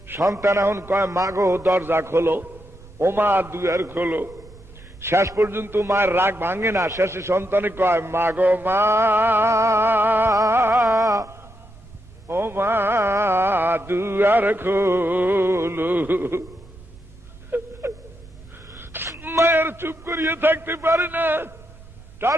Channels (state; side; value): noise; right; rumble, 21 dB below the sound